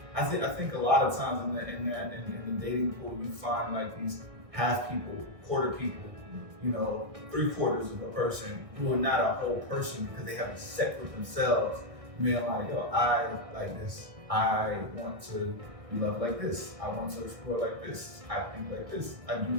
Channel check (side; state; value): left; late; 1.8 ms